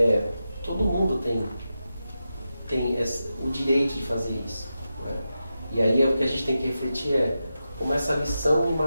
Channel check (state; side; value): inverted; both; correlation -0.90